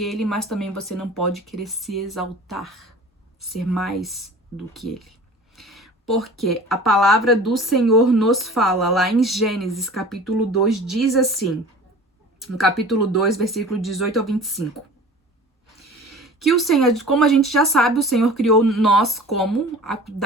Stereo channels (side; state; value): both; normal; correlation 0.42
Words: ele, mas também você não pode querer se exaltar, ser mais do que ele. Porque a palavra do Senhor nos fala lá em Gênesis, capítulo 2, diz assim, no capítulo 2, versículo 18 ao 25. Que o Senhor, como a gente já sabe, o Senhor criou nós como